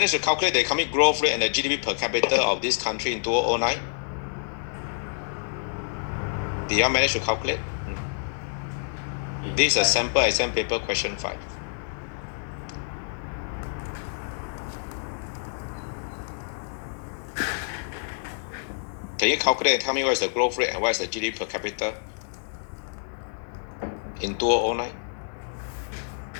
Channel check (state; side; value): silent; right; digital silence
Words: to calculate the economic growth rate and the GDP per capita of this country in 2009? Did you manage to calculate? This is a sample exam paper question 5. Can you calculate and tell me what is the growth rate and what is the GDP per capita in 2009?